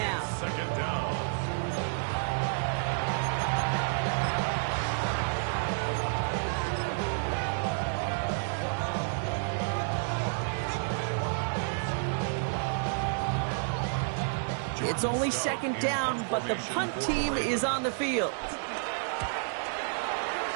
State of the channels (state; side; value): silent; left; digital silence